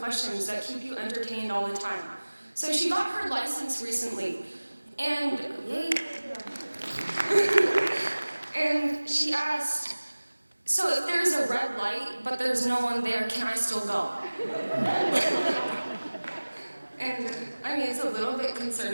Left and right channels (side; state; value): both; inverted; correlation -1.00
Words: that keep you entertained all the time. So she got her license recently, and and she asked, "So if there's a red light, but there's no one there, can I still go?" And I mean, it's a little bit